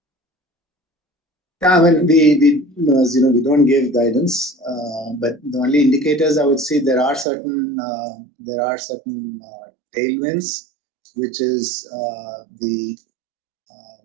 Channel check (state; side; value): drops out; left; at 7.2 s